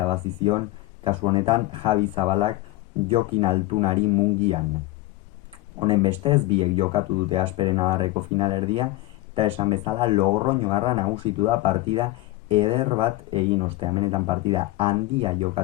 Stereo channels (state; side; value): quieter; right; 18.1 dB